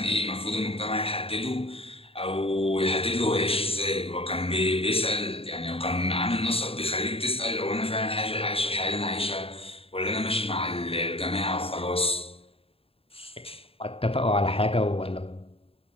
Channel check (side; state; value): right; late; 0.27 ms